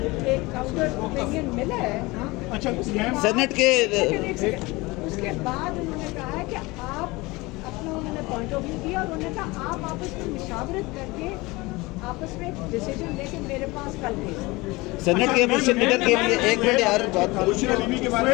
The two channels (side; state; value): right; quieter; 22.7 dB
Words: ایک کاؤنٹر اوپینین ملا ہے سینٹ کے اس کے بعد انہوں نے کہا ہے کہ آپ اپنا انہوں نے پوائنٹ آف ویو دیا اور انہوں نے کہا آپ آپس میں مشاورت کر کے آپس میں ڈیسیجن لے کے میرے پاس کل بھیج. سینٹ کے اپوزیشن لیڈر کے لیے ایک منٹ یار بات بشرا بیوی کے